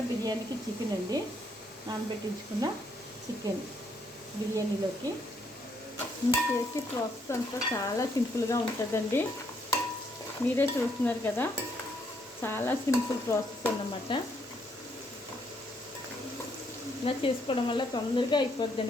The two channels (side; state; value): both; normal; correlation 0.72